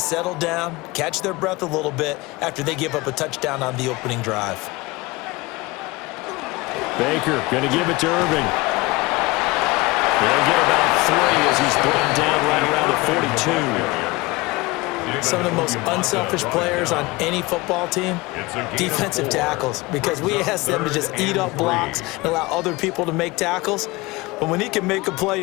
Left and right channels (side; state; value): right; quieter; 22.4 dB